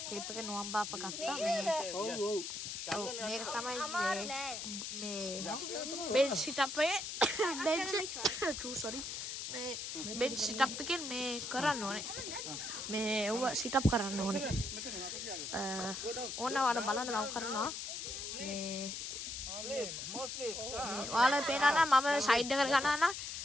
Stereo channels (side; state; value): left; noise; hiss, 5 dB below the sound